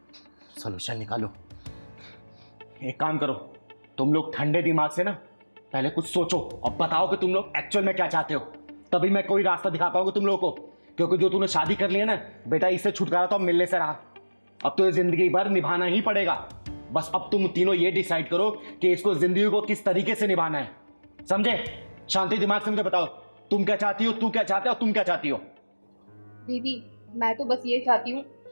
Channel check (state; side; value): inverted; both; correlation -1.00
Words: सोल्यूशन निकालो। एक काम करो, तुम लोग ठंडे दिमाग से ना पहले कुछ सोचो और बताओ कि तुम लोग एक्चुअल में क्या चाहते हो, तभी मैं कोई रास्ता दिखा पाऊंगा तुम लोगों को। क्योंकि जो तूने शादी कर लिया ना बेटा, इससे छुटकारा तो मिलने से रहा, अब तो ये जिंदगी भर निभाना ही पड़ेगा। बस अब तुम तीनों ये डिसाइड करो कि इसको जिंदगी को किस तरीके से निभाना है, समझे? शांति दिमाग से मुझे बताओ, तुम क्या चाहती हो, तू क्या चाहते हो, तुम क्या चाहती हो? दीदी मैं तो बस ये चाहती हूँ,